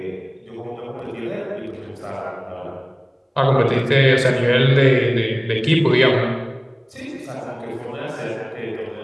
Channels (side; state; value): both; identical; correlation 1.00